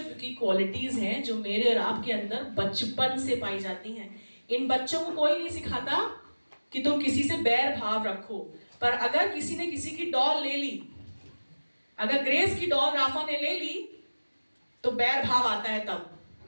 की क्वालिटीज हैं जो मेरे और आपके अंदर बचपन से पाई जाती हैं। इन बच्चों को कोई नहीं सिखाता कि तुम किसी से बैर भाव रखो, पर अगर किसी ने किसी की डॉल ले ली, अगर ग्रेस की डॉल राफा ने ले ली, तो बैर भाव आता है तब,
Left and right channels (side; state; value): both; inverted; correlation -1.00